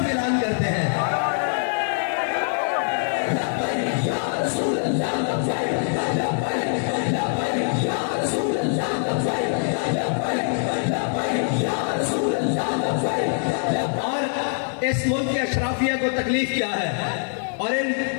اعلان کرتے ہیں۔ اور اس ملک کے اشرافیہ کو تکلیف کیا ہے، اور ان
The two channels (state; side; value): silent; right; 61 dB below the other